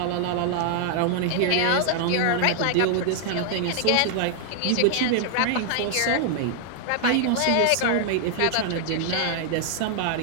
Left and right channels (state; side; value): different; both; correlation -0.01